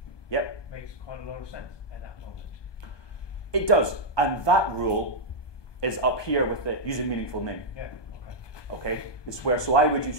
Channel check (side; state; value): right; late; 1.2 ms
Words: yep, makes quite a lot of sense at that moment. It does, and that rule is up here with the using meaningful name. Yeah. Okay, it's where so I would use